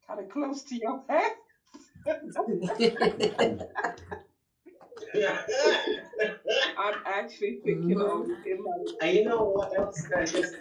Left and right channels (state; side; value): identical; both; correlation 1.00